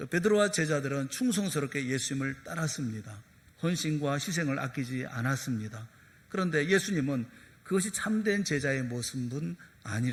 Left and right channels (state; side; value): identical; both; correlation 1.00